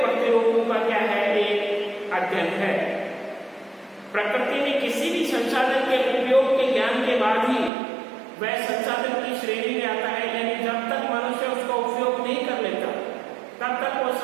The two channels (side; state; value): left; drops out; at 7.7 s